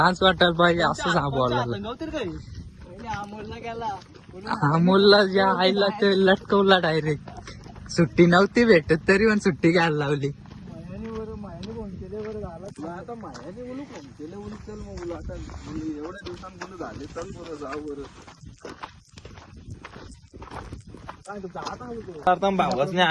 वाटायला पाहिजे असं बोलायला. नव्हतं काही. पहिले अमोलला गेला अमोलला ज्या आईला ते लटकवला डायरेक्ट. सुट्टी नव्हती भेटत तरी पण सुट्टी घ्यायला लावली. मायाने फोन केले बरं झाला तुला आता मायाने बोलू फोन केले बोलू चल मग बोलू आता बोलू एवढ्या दिवसांनी बोलू झाले चल बरं जाऊ बरं. काय तू जाता होतो आता भावासने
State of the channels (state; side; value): identical; both; correlation 1.00